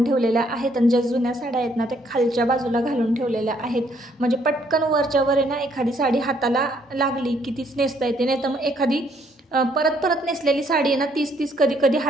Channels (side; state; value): both; normal; correlation 0.68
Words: ठेवलेल्या आहेत. आणि ज्या जुन्या साड्या आहेत ना त्या खालच्या बाजूला घालून ठेवलेल्या आहेत, म्हणजे पटकन वरच्या वर आहे ना एखादी साडी हाताला लागली की तीच नेसता येते. नाही तर मग एखादी परत नेसलेली साडी आहे ना, तीच कधी